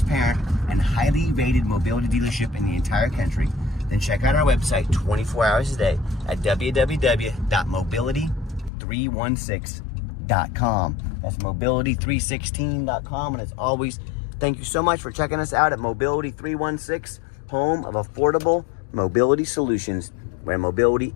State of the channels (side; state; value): right; drops out; at 8.7 s